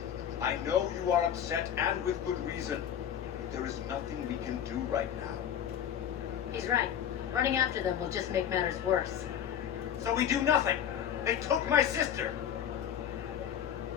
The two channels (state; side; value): quieter; right; 9.5 dB